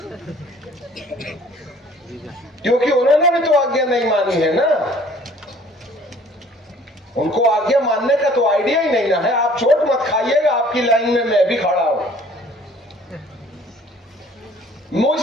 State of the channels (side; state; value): both; normal; correlation 0.54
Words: क्योंकि उन्होंने भी तो आज्ञा नहीं मानी है ना, उनको आज्ञा मानने का तो आइडिया ही नहीं ना है। आप चोट मत खाइएगा, आपकी लाइन में मैं भी खड़ा हूं।